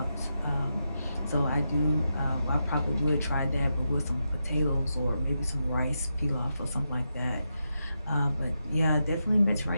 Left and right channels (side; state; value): both; inverted; correlation -0.86